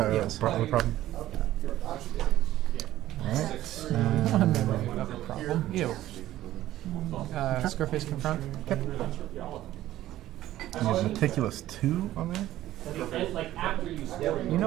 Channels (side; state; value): left; quieter; 14.3 dB